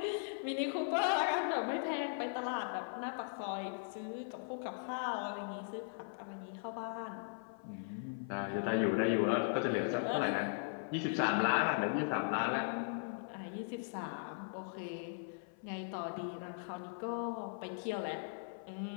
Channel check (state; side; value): silent; right; 52 dB below the other